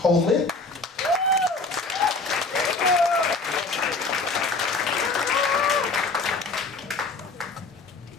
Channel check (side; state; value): right; quieter; 3.7 dB